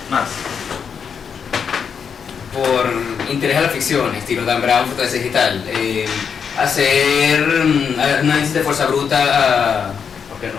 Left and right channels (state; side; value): quieter; right; 6.8 dB